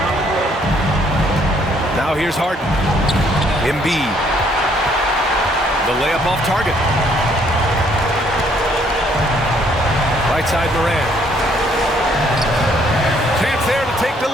Now here's Harden. Embiid. The layup off target. Right side Morant. Chance there to take the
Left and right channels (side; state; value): both; normal; correlation 0.66